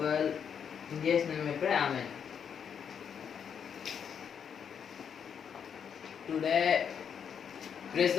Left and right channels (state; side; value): quieter; right; 7.5 dB